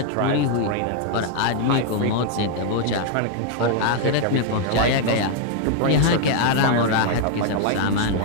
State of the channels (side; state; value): both; different; correlation 0.00